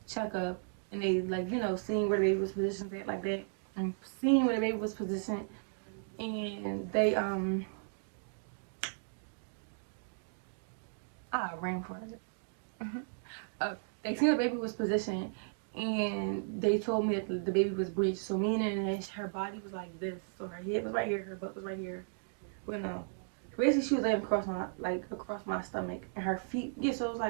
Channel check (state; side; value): silent; left; digital silence